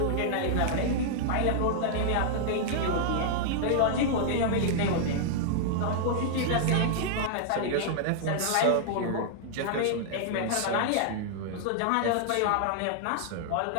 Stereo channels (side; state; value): both; different; correlation -0.01